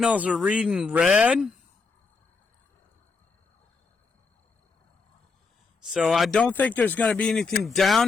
are reading red. So I don't think there's going to be anything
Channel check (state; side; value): quieter; right; 4.4 dB